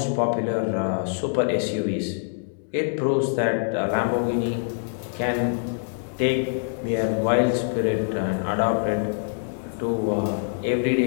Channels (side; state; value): right; silent; digital silence